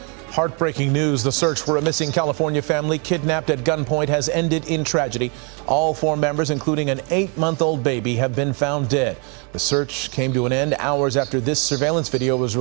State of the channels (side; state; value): left; quieter; 35.6 dB